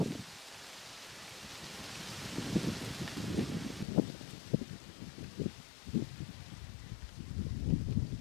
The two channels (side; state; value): right; drops out; at 3.9 s